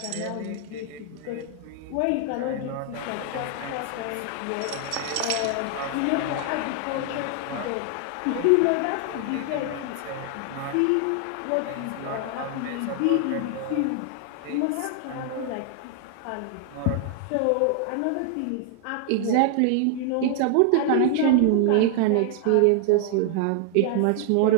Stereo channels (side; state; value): both; different; correlation 0.00